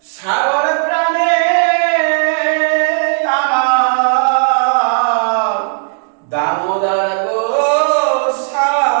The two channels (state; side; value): silent; left; digital silence